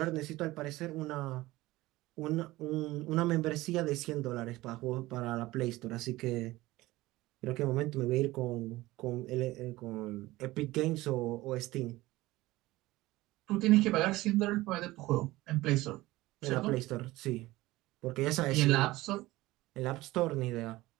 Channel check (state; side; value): quieter; left; 18.5 dB